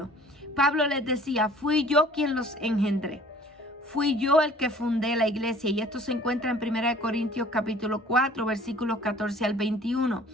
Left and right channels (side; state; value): both; normal; correlation 0.51